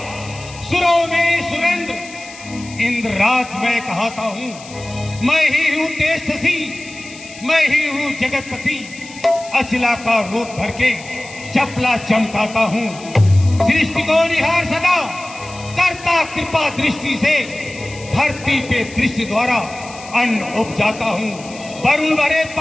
सुरों में सुरेंद्र, इंद्रराज मैं कहता हूँ। मैं ही हूँ तेजस्वी, मैं ही हूँ जगतपति। अचला का रूप धर के चपला चमकाता हूँ। सृष्टि को निहार सदा करता कृपा दृष्टि से। धरती पे दृष्टि द्वारा अन्न उपजाता हूँ। वरुण भरे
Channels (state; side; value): noise; left; hiss, 17 dB below the sound